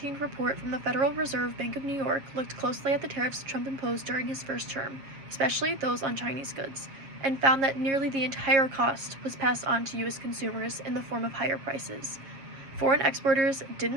report from the Federal Reserve Bank of New York looked closely at the tariffs Trump imposed during his first term, especially those on Chinese goods, and found that nearly the entire cost was passed on to U.S. consumers in the form of higher prices. Foreign exporters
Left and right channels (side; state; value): left; late; 7.5 ms